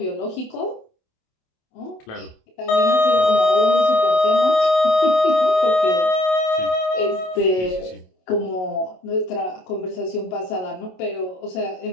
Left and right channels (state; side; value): late; right; 27 ms